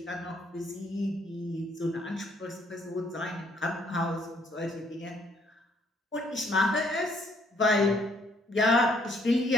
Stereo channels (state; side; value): normal; both; correlation 0.66